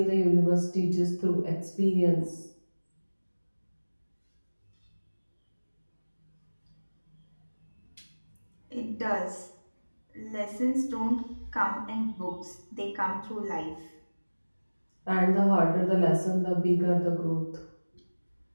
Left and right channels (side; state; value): both; inverted; correlation -1.00